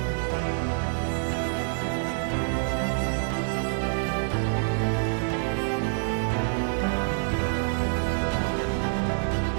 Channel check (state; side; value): silent; left; 60 dB below the other